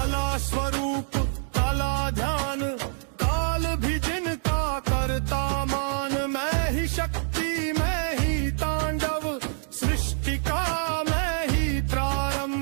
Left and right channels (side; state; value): left; silent; 61 dB below the other